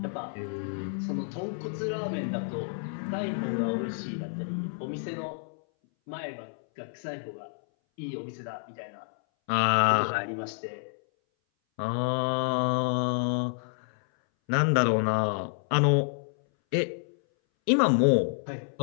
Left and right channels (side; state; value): right; silent; 58 dB below the other